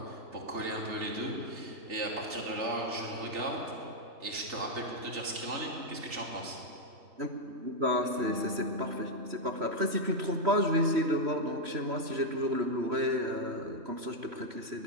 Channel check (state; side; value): late; left; 3.0 ms